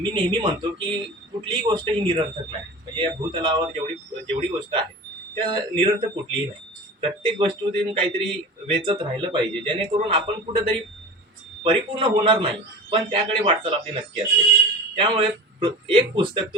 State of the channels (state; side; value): normal; both; correlation 0.34